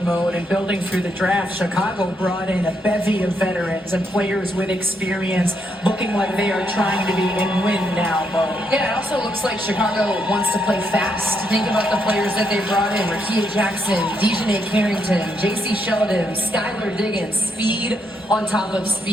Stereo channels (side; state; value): both; normal; correlation 0.77